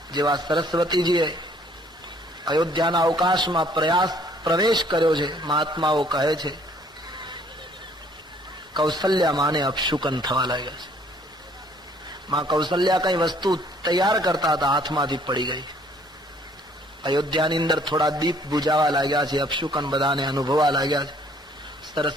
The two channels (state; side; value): normal; both; correlation 0.61